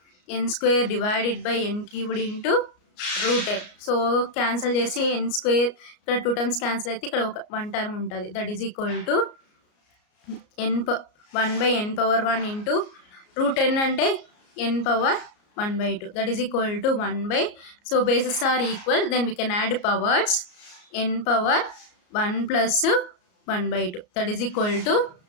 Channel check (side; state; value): right; late; 33 ms